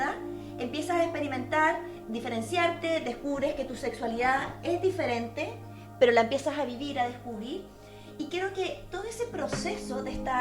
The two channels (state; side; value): identical; both; correlation 1.00